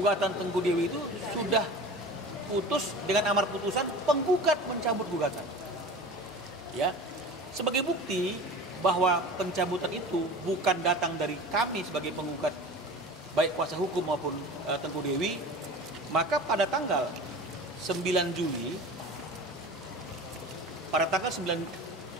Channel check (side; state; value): both; normal; correlation 0.36